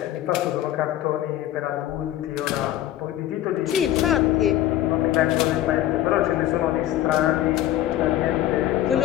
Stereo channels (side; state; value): right; quieter; 13.2 dB